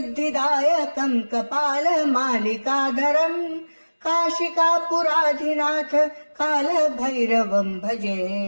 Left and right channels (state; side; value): inverted; both; correlation -1.00